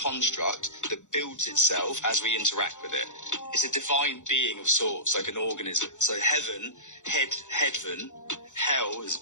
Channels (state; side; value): late; right; 0.85 ms